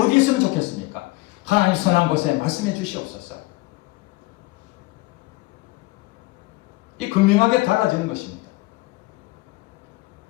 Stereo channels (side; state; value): right; quieter; 21.3 dB